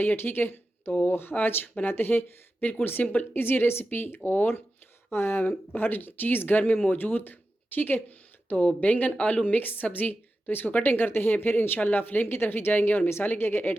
ठीक है। तो आज बनाते हैं बिल्कुल सिंपल इजी रेसिपी और हर चीज़ घर में मौजूद, ठीक है। तो बैंगन आलू मिक्स सब्ज़ी, तो इसको कटिंग करते हैं, फिर इंशाल्लाह फ्लेम की तरफ ही जाएंगे और मिसाले क्या क्या ऐड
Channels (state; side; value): normal; both; correlation 0.92